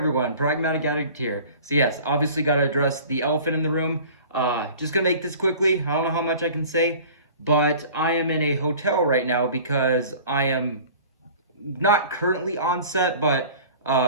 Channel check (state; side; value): inverted; both; correlation -0.44